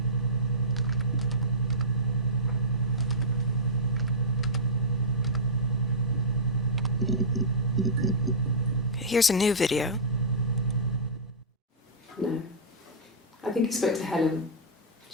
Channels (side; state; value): both; normal; correlation -0.15